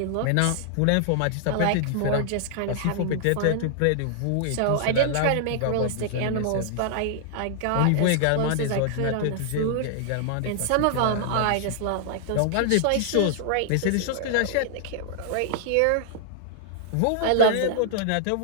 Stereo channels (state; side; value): different; both; correlation -0.01